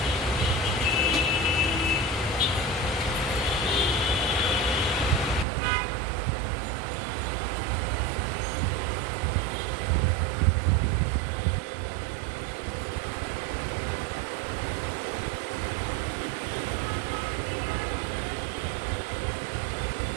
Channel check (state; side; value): drops out; left; at 5.5 s